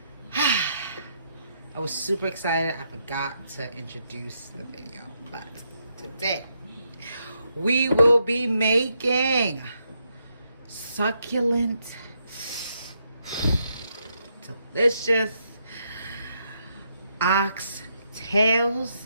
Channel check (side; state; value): both; inverted; correlation -0.79